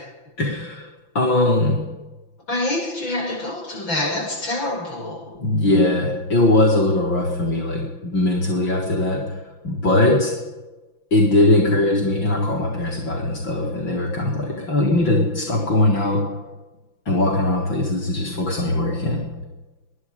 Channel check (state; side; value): late; right; 5.9 ms